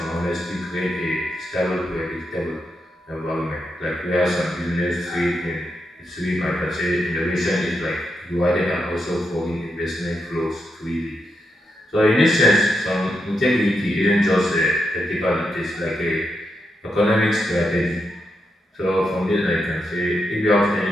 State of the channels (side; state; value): both; normal; correlation 0.84